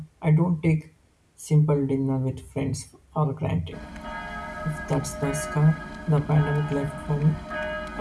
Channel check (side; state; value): both; identical; correlation 1.00